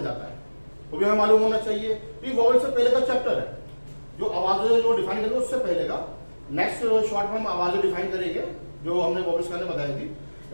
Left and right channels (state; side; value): inverted; both; correlation -1.00